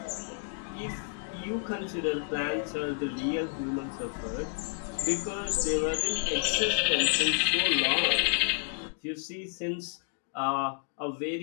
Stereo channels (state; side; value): silent; right; digital silence